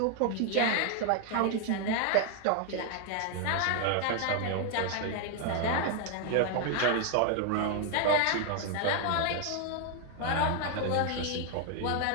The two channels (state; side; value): different; both; correlation 0.00